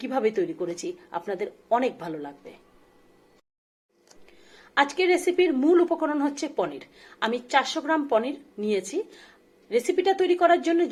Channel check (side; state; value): both; identical; correlation 1.00